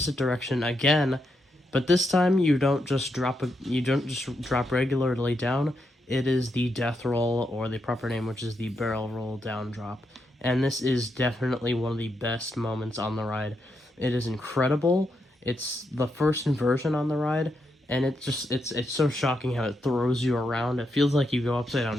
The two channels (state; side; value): normal; both; correlation 0.82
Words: direction again. But this time, you don't just drop regularly down. It is the death roll, or the proper name, which is the barrel roll down drop. And this is definitely one of the best moments on the ride. It is incredible. It's the first inversion on the ride, and it's so shocking how it throws you around. It feels like you go upside